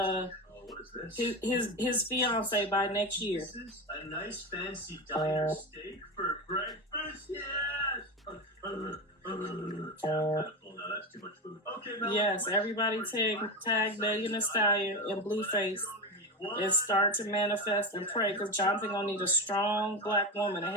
his fiance by next year. A nice fancy diner steak for breakfast. Yes. That's too much food. Okay, yes, everybody tag Megan Thee Stallion and BlueFace and start to manifest and pray, because Jonathan gonna need a strong black woman to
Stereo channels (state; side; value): normal; both; correlation 0.20